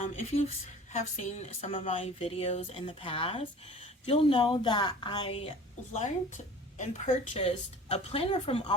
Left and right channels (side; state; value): both; normal; correlation 0.43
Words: If you have seen some of my videos in the past, you'll know that I learned and purchased a planner from